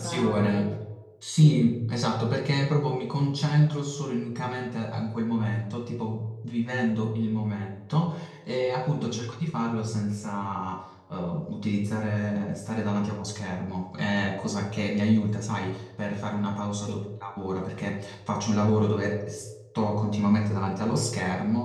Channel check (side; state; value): both; identical; correlation 1.00